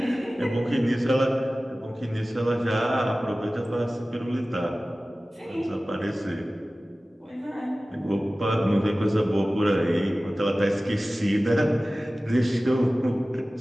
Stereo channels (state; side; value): normal; both; correlation 0.97